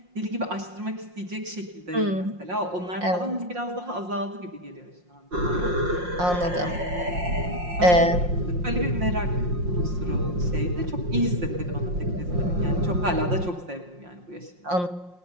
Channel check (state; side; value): late; left; 5.6 ms